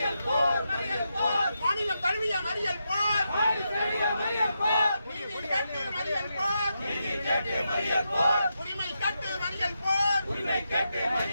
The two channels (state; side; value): inverted; both; correlation -0.85